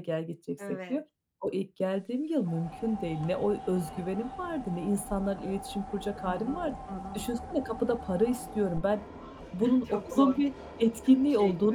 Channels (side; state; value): both; identical; correlation 1.00